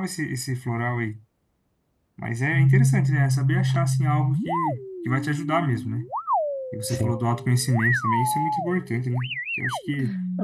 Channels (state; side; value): identical; both; correlation 1.00